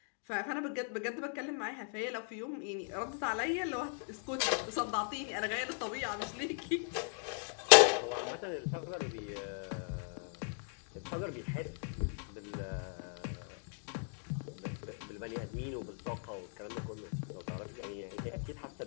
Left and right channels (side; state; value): right; silent; 53 dB below the other